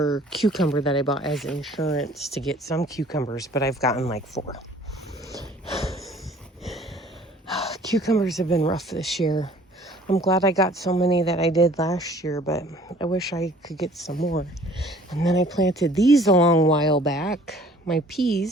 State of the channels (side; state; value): both; normal; correlation 0.53